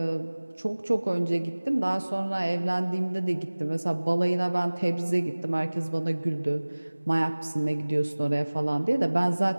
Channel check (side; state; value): both; inverted; correlation -1.00